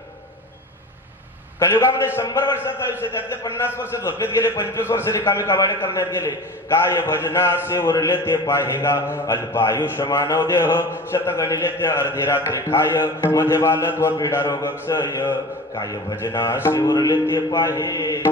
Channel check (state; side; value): normal; both; correlation 0.35